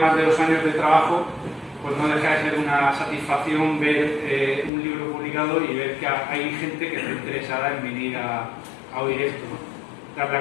de 2 años de trabajo, pues no deja de ser una satisfacción ver un libro publicado y ver que hay gente que está interesada en venir a oír esto, ¿no? Dar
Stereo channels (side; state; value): right; drops out; at 4.7 s